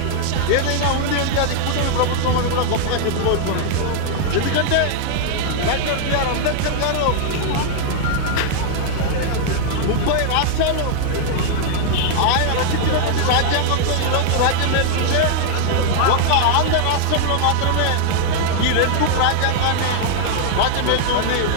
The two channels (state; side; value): different; both; correlation 0.00